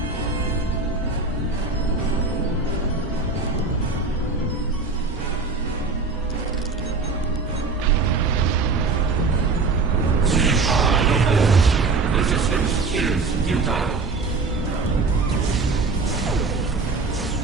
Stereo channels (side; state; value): left; quieter; 4.1 dB